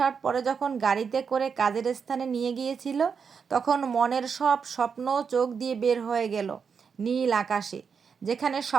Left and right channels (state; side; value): quieter; left; 6.2 dB